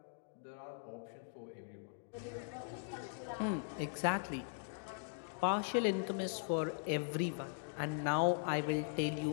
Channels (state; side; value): silent; right; digital silence